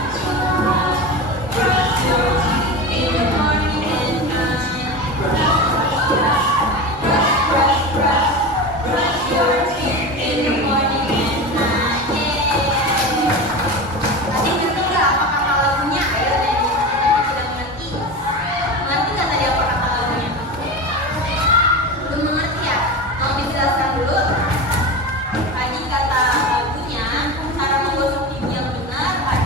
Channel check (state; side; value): normal; both; correlation 0.26